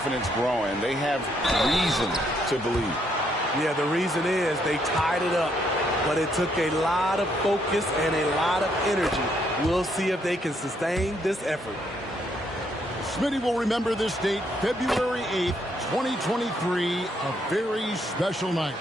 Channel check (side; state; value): both; normal; correlation 0.72